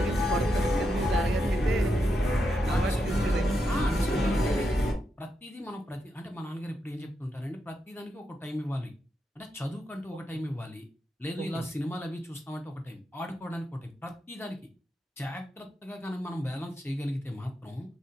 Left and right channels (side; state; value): both; normal; correlation 0.84